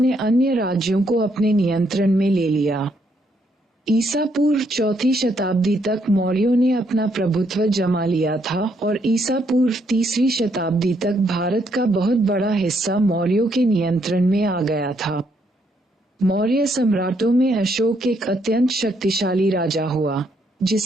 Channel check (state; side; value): normal; both; correlation 0.73